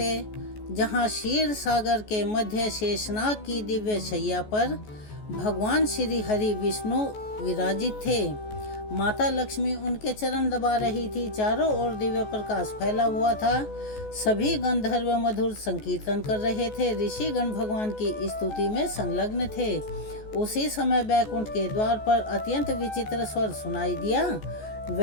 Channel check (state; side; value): late; right; 14 ms